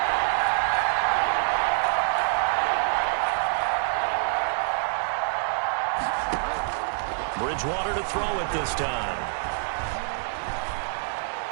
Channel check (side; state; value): left; silent; 61 dB below the other